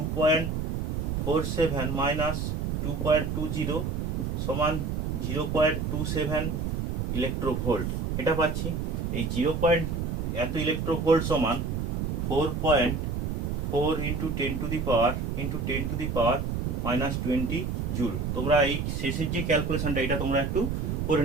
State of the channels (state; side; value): noise; right; rumble, 1 dB below the sound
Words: মাইনাস 2.20 সমান 0.27 ইলেকট্রোভোল্ট, এটা পাচ্ছি। এই এত ইলেকট্রোভোল্ট সমান 4.4 into 10 to the power -20 joule. তোমরা এই শেষের যে ক্যালকুলেশনটা এটা তোমরা একটু করে